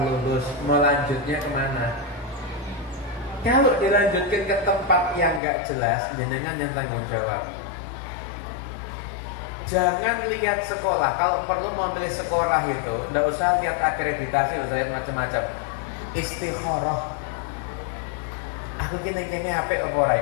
melanjutnya kemana? Kalau dilanjutkan ke tempat yang gak jelas, jenengan yang tanggung jawab. Jangan lihat sekolah. Kalau perlu mau pilih sekolah itu, nggak usah lihat akreditasi, nggak usah lihat macam-macam. Istikharah. Aku gini HP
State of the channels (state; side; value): drops out; right; at 5.4 s